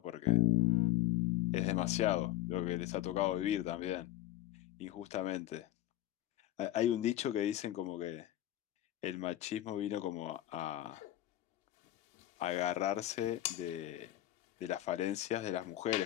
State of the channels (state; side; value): quieter; right; 14.2 dB